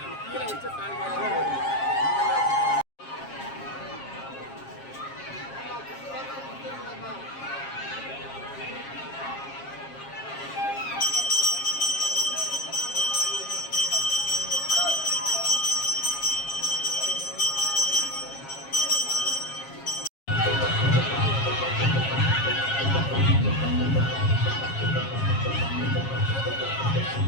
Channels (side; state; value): right; late; 7.4 ms